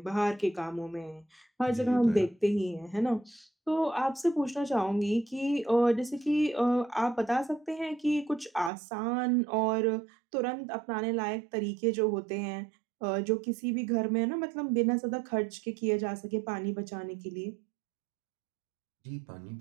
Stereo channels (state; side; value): drops out; left; at 8.7 s